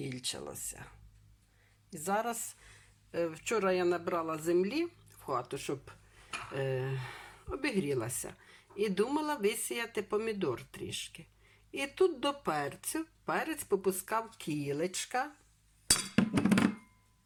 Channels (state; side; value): identical; both; correlation 1.00